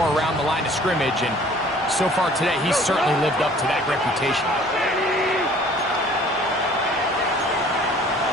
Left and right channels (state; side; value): normal; both; correlation 0.53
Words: around the line of scrimmage, and so far today, he's certainly lived up to that reputation.